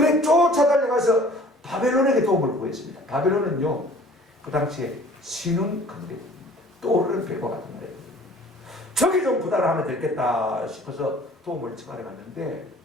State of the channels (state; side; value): normal; both; correlation 0.51